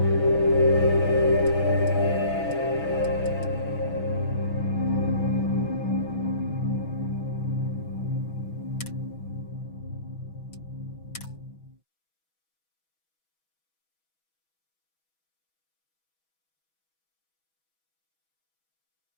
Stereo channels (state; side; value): late; right; 6.2 ms